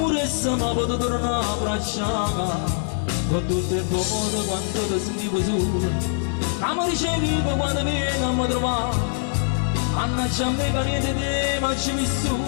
ma potevo tornare a abbracciare, con tutto il modo quando ti sentivo solo, che mi ricevevo quando vieni a mi trovare. Mannaggia a me che niente di te ma ci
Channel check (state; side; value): silent; right; digital silence